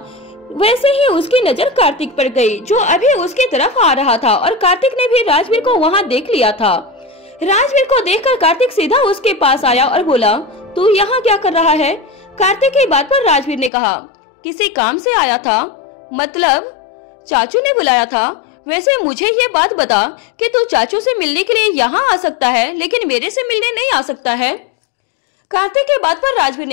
वैसे ही उसकी नजर कार्तिक पर गई जो अभी उसकी तरफ आ रहा था और कार्तिक ने भी राजवीर को वहाँ देख लिया था। राजवीर को देखकर कार्तिक सीधा उसके पास आया और बोला, तू यहाँ क्या कर रहा है? कार्तिक की बात पर राजवीर ने कहा, किसी काम से आया था। मतलब चाचू ने बुलाया था। वैसे मुझे ये बात बता कि तू चाचू से मिलने के लिए यहाँ आ सकता है लेकिन मेरे से मिलने नहीं आ सकता है। कार्तिक की बात पर राजवीर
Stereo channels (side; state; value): right; drops out; at 13.7 s